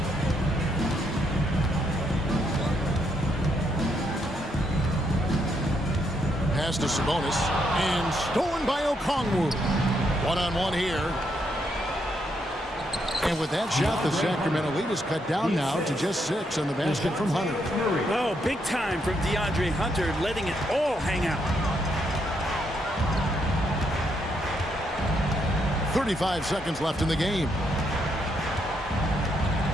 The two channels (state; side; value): normal; both; correlation 0.77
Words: Pass to Sabonis, and stolen by Okongwu. One-on-one here. And with that shot, the Sacramento lead is cut down now to just 6 on the basket from Hunter. Oh, big time from DeAndre Hunter, letting it all hang out. 35 seconds left in the game.